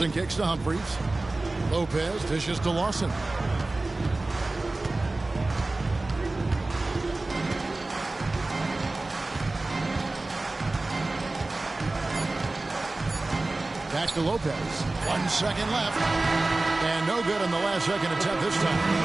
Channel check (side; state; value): left; quieter; 3.0 dB